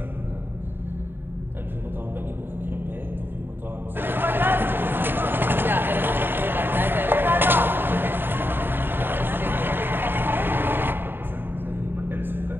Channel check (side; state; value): left; late; 0.097 ms